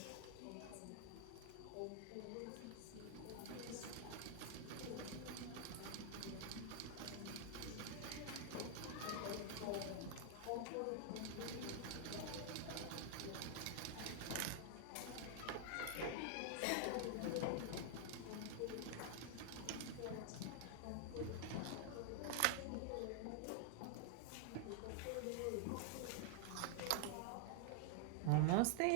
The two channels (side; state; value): both; different; correlation 0.00